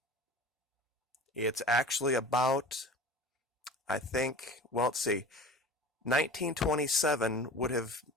It's actually about, let's see, 1927 would have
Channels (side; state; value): both; normal; correlation 0.38